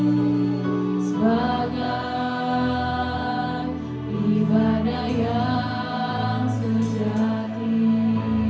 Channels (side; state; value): both; identical; correlation 1.00